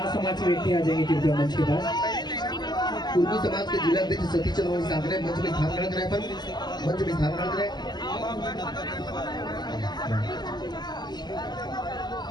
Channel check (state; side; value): late; right; 0.21 ms